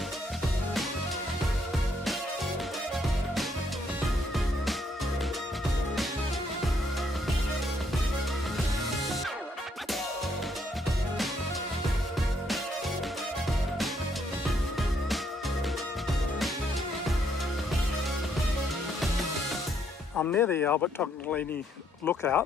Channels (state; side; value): normal; both; correlation 0.71